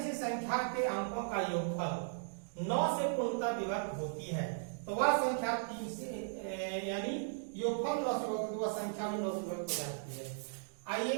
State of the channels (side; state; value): left; silent; digital silence